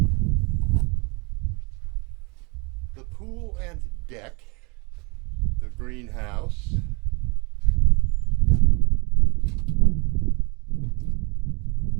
The pool and deck, the greenhouse,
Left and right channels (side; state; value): left; quieter; 29.4 dB